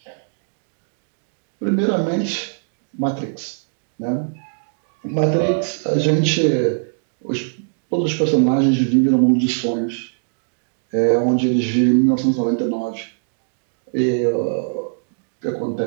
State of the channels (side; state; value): left; silent; digital silence